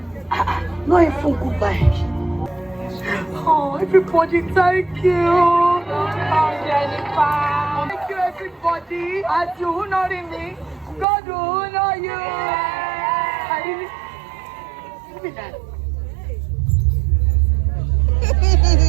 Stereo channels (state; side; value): drops out; left; at 11.1 s